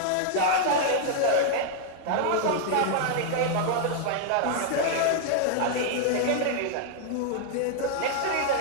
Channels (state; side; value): different; both; correlation 0.00